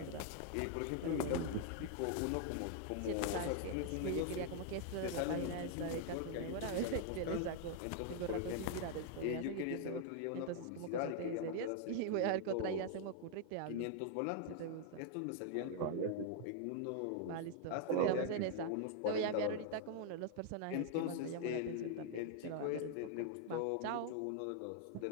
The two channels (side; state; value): both; different; correlation 0.00